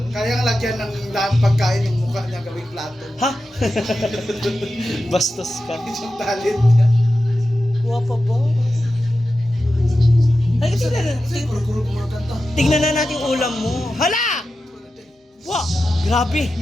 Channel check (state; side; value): normal; both; correlation 0.92